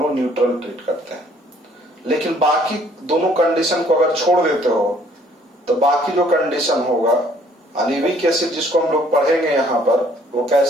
लोग न्यूट्रल ट्रीट करते हैं। लेकिन बाकी दोनों कंडीशन को अगर छोड़ देते हो तो बाकी जो कंडीशन होगा, यानी वीक एसिड जिसको हम लोग पढ़ेंगे यहाँ पर, वो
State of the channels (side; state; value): both; normal; correlation 0.61